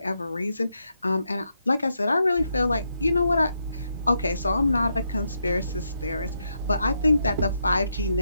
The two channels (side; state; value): both; inverted; correlation -0.81